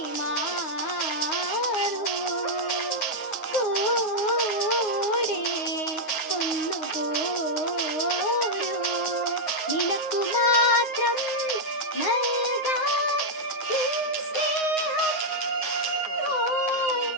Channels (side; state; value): right; late; 9.5 ms